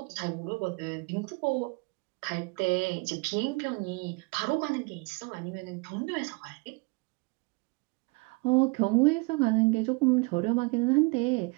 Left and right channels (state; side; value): quieter; left; 29.0 dB